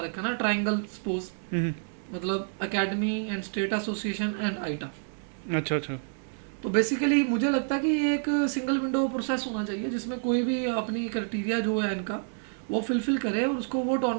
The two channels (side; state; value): left; silent; digital silence